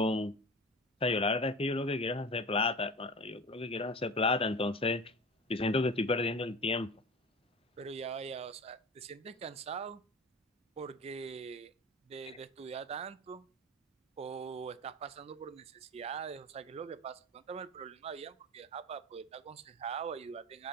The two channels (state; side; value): normal; both; correlation 0.34